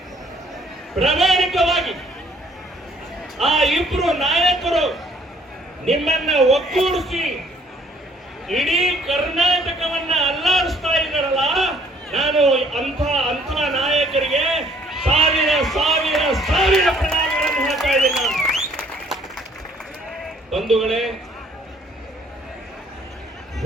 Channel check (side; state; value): both; normal; correlation 0.60